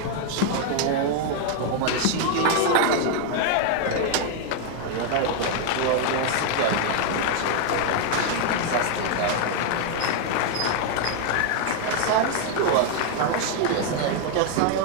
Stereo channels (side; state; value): both; different; correlation 0.00